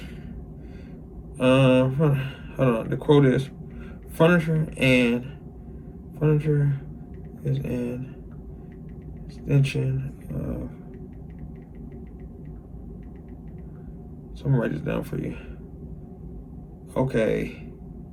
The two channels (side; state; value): both; identical; correlation 1.00